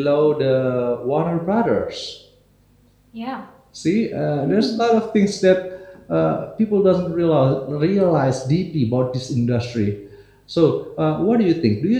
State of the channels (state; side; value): identical; both; correlation 1.00